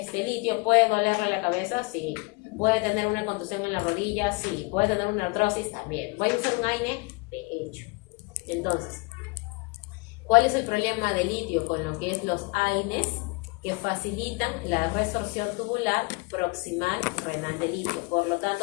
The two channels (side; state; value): right; quieter; 27.3 dB